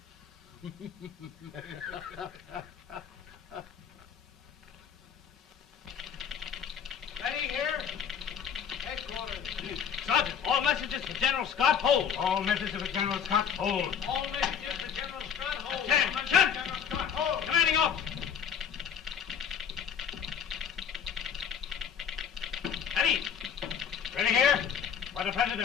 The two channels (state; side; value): quieter; right; 7.7 dB